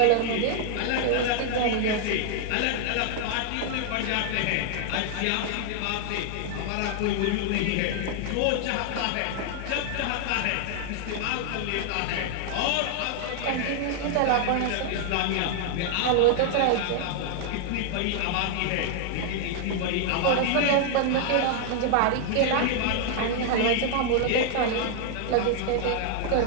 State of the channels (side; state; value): both; different; correlation 0.00